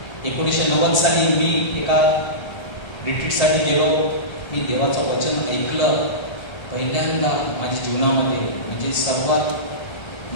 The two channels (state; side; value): late; right; 1.3 ms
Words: 1990 साली मी एका रिट्रीटसाठी गेलो. मी देवाचं वचन ऐकलं पहिल्यांदा माझ्या जीवनामध्ये. म्हणजे सर्वात